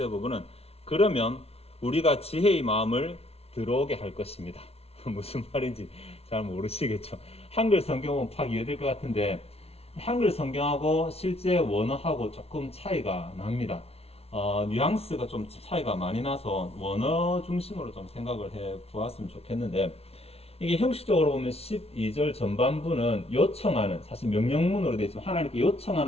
부분은 그러면 우리가 지혜의 마음을 들어오게 할 것입니다. 무슨 말인지 잘 모르시겠죠. 한글 성경은 파악 이해될 것 같은데 한글 성경하고 실제 원어하고 조금 차이가 납니다. 뉘앙스가 좀 차이가 많이 나서 원어 중심으로 좀 생각을 해 보았으면 좋겠는데, 이게 형식적으로 보면 12절 전반부는 요청하는, 사실 명령문으로 되어 있지만 하나님께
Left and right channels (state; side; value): late; right; 0.30 ms